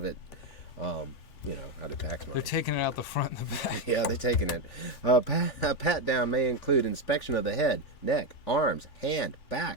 it, out of tax money. They're taking it out the front and the back. Yeah, they're taking it. A pat down may include inspection of the head, neck, arms, hand,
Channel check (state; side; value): late; right; 3.4 ms